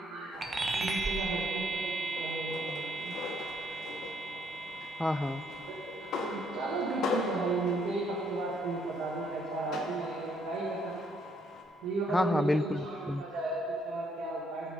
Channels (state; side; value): normal; both; correlation 0.70